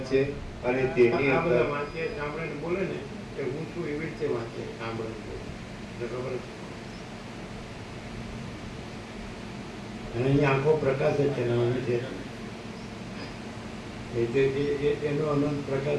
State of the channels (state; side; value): identical; both; correlation 1.00